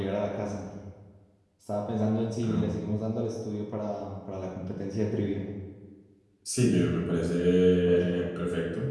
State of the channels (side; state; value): both; identical; correlation 1.00